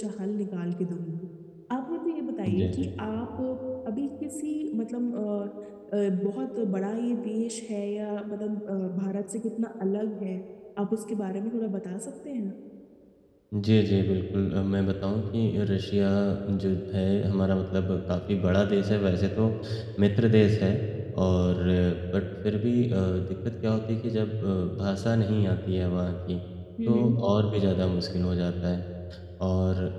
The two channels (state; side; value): identical; both; correlation 1.00